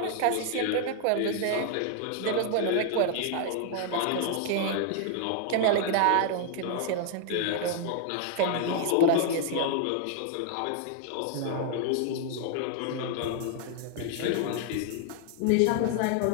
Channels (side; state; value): both; different; correlation 0.00